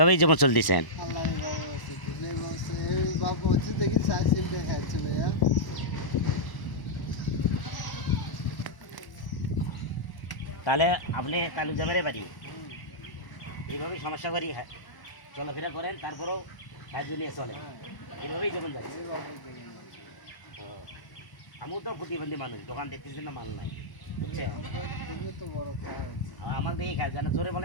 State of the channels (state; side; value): late; right; 1.0 ms